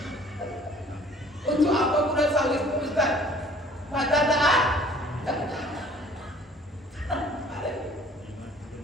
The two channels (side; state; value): both; normal; correlation 0.53